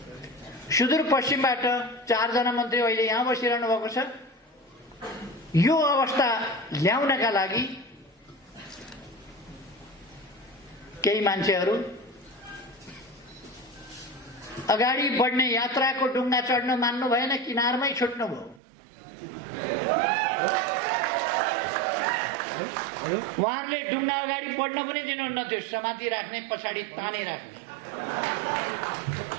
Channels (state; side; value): drops out; left; at 18.6 s